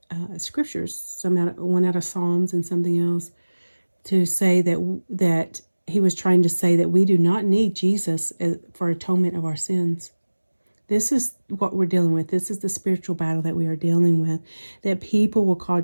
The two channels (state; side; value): inverted; both; correlation -1.00